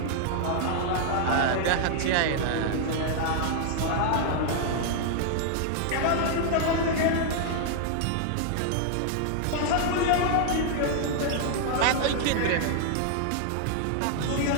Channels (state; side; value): different; both; correlation 0.00